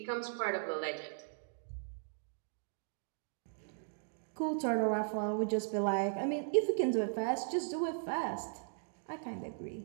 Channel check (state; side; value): silent; left; digital silence